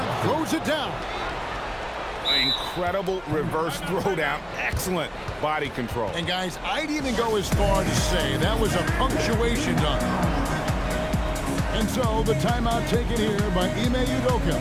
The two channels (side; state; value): both; identical; correlation 1.00